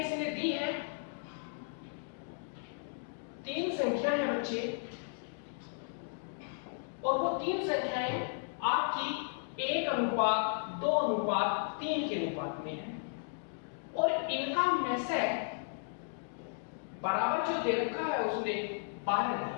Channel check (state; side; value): silent; right; digital silence